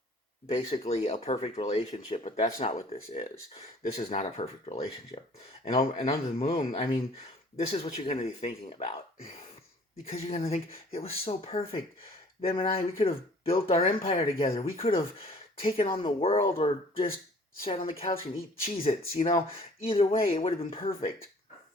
basically a perfect relationship, but that's not what this is. This is not a perfect relationship. And under the Moon, I mean, this is what you're going to be thinking about, because you're going to think it was so perfect. Them and I, we could have built our empire together. We could have taken on the world, or just sat on the couch and eat Cheez-Its. Either way, it would have been perfect.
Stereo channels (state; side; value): normal; both; correlation 0.53